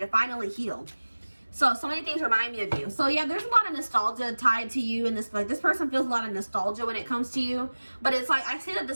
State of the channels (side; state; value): both; inverted; correlation -1.00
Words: finally heal. So many things remind me of you. So yeah, there's a lot of nostalgia tied to you, and this person feels a lot of nostalgia when it comes to you. But it's like, I see that